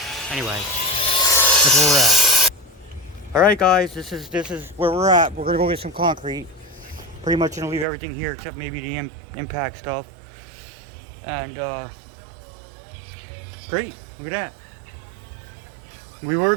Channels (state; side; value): drops out; left; at 7.9 s